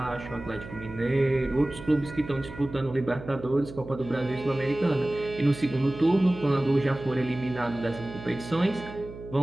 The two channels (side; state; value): right; noise; hum, 13 dB below the sound